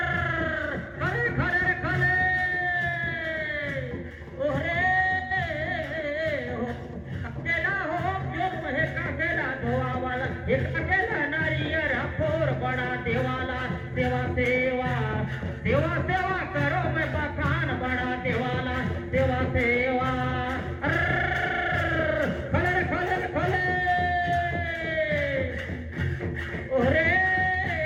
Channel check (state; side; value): identical; both; correlation 1.00